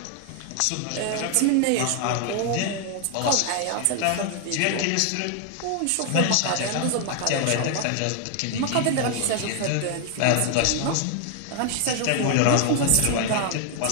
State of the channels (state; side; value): different; both; correlation 0.00